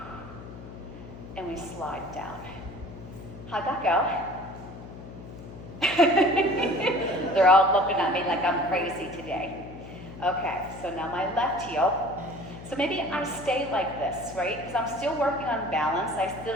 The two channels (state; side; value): noise; left; hum, 14 dB below the sound